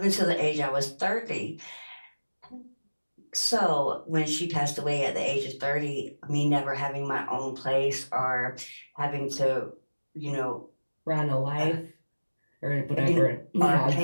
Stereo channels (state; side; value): inverted; both; correlation -1.00